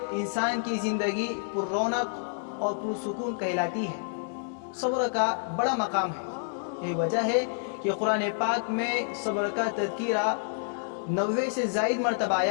इंसान की ज़िंदगी पुररौनक और पुरसुकून कहलाती है। सब्र का बड़ा मकाम है। यही वजह है कि कुरान पाक में सब्र का तज़किरा 90 से ज़ायद मरतबा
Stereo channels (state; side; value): silent; right; 59 dB below the other